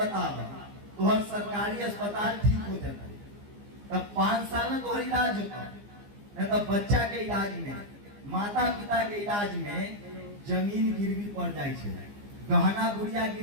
तोहर सरकारी अस्पताल ठीक हो जाता है तब 5 साल में तोहर इलाज होता, नहीं तो बच्चा के इलाज में, माता पिता के इलाज में जमीन गिरवी पड़ जाए, गहना गुड़िया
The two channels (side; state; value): left; late; 15 ms